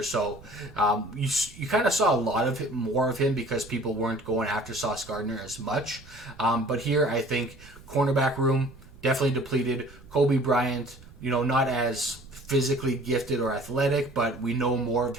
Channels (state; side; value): noise; right; rumble, 21 dB below the sound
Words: so you kind of saw a lot of more of him because people weren't going after Sauce Gardner as much. But here, I think cornerback room definitely depleted. Kobe Bryant, not as physically gifted or athletic, but we know more of